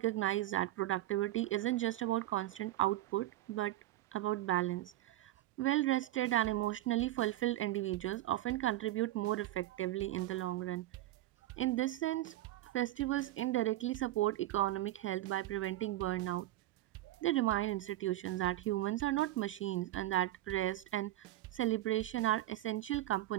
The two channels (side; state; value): left; quieter; 15.0 dB